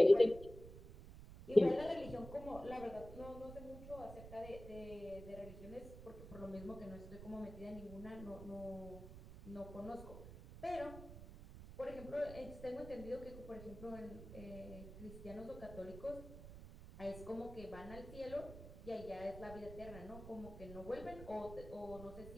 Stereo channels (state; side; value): noise; right; rumble, 13 dB below the sound